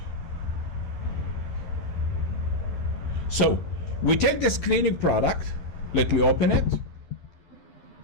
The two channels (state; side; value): late; right; 12 ms